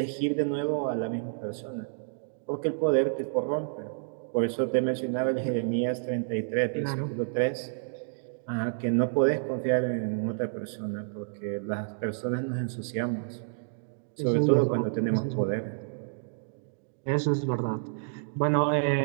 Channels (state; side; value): silent; left; digital silence